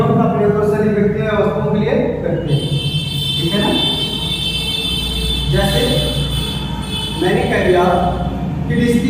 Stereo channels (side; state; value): both; identical; correlation 1.00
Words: का प्रयोग दो से अधिक व्यक्तियों या वस्तुओं के लिए करते हैं। ठीक है ना। जैसे मैंने कह दिया कि